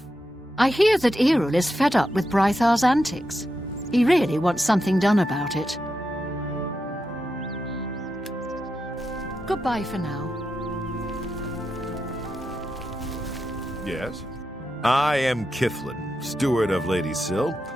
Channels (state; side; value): normal; both; correlation 0.87